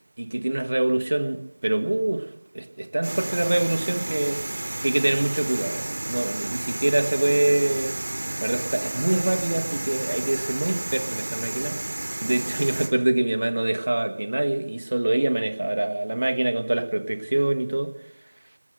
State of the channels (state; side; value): inverted; both; correlation -1.00